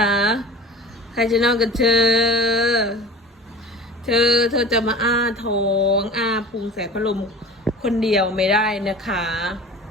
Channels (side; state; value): both; normal; correlation 0.38